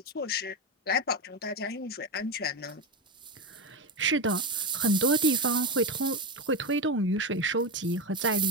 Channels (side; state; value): both; normal; correlation 0.14